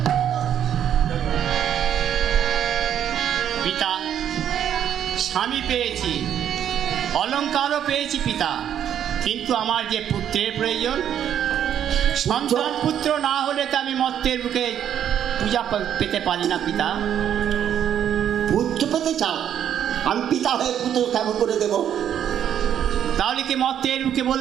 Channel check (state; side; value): quieter; left; 9.7 dB